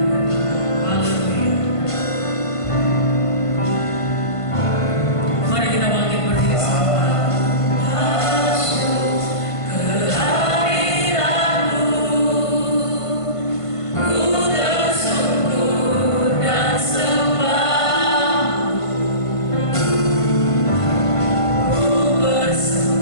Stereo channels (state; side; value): late; right; 1.5 ms